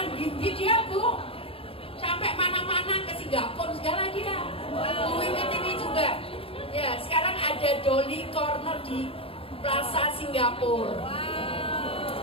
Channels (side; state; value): right; late; 0.27 ms